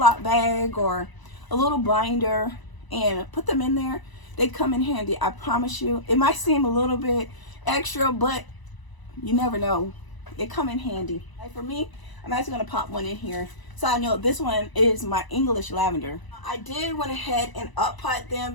bag or a little binder and put them in there. They come in handy, I promise you. It might seem a little bit extra, but you never know. It come in handy. Like for me, I'm actually going to pop one in here so I know this one is my English lavender. I did went ahead and up pot them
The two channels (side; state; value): right; late; 1.0 ms